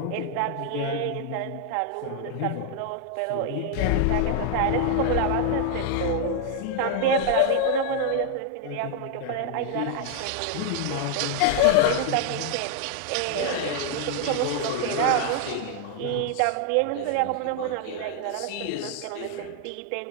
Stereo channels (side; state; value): both; different; correlation 0.00